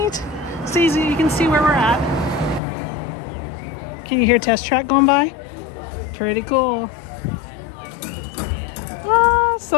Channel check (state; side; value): drops out; right; at 2.6 s